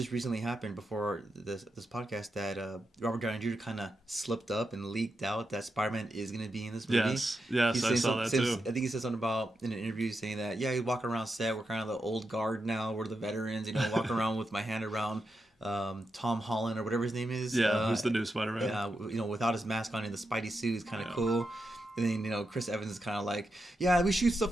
recently happened before this podcast that Robert Downey Jr. kind of slipped up and leaked out that Spider-Man is going to be in this movie. Yes, I saw that too. I think he said something about in an interview saying that he's walking around set. We're kind of the old guard now. We're the veterans. Walking around with my hand around Tom Holland or whatever his name is. Yeah, who's the new Spider-Man? Without his mask on and the Spidey suit is kind of cool. And then, Chris Evans is kind of like, we shoot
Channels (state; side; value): normal; both; correlation 0.87